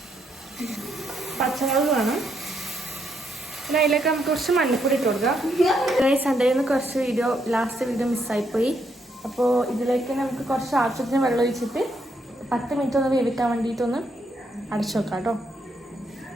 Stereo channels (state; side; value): normal; both; correlation 0.76